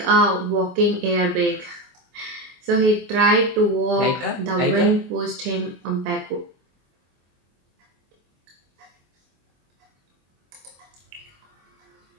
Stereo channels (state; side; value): late; left; 23 ms